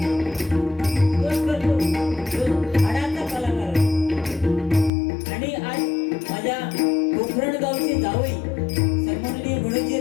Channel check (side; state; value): right; drops out; at 4.9 s